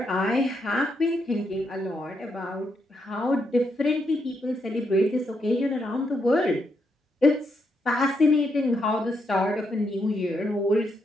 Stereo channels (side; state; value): both; normal; correlation 0.79